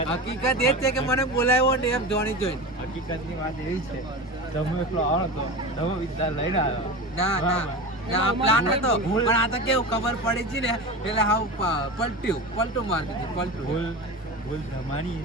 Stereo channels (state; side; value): normal; both; correlation 0.27